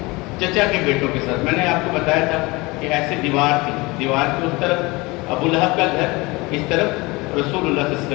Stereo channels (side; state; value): right; quieter; 23.7 dB